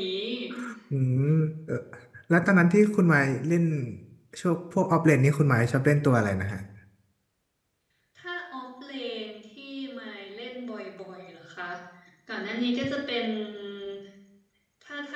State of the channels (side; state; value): both; identical; correlation 1.00